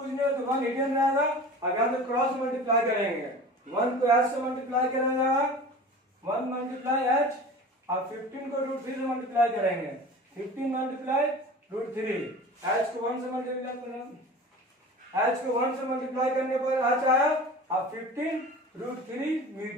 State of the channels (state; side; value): normal; both; correlation 0.37